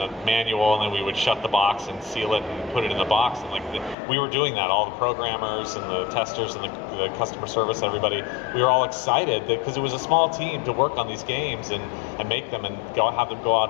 manual, and then we would shut the box and seal it and put it in the box. And we were doing that, all the programmers and the testers and the customer service, everybody. We were all excited because it was a small team to work on these games and make them and have them go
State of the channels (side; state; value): right; drops out; at 4.0 s